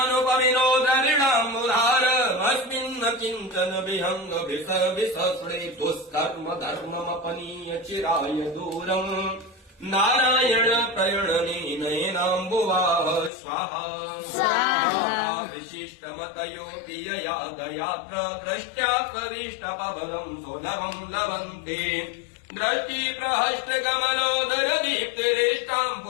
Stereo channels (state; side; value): drops out; right; at 13.3 s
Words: द्रविणाम्बुधारमस्मिन् किञ्चन विहङ्गभिसविसस्रे दुष्कर्म धर्ममपनीय चिराय दूरम् नारायण प्रणयनेनाम्बुवाह स्वाहा विशिष्टमतयोऽपि यया दयात्र द्रष्ट्या करिष्ठपबलम् सुलभम् लभन्ते दृष्टि प्रहष्टकमलोदर दीप्तिरेष्टाम्